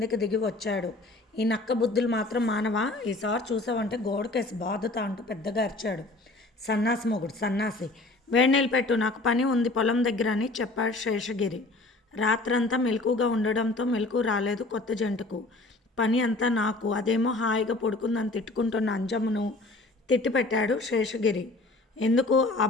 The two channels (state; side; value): quieter; right; 3.0 dB